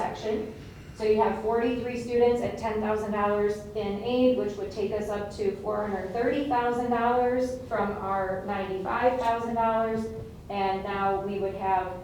So you have 43 students at $10,000 in aid, which would take us up to $430,000 from our $95,000. And now we would have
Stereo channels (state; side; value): identical; both; correlation 1.00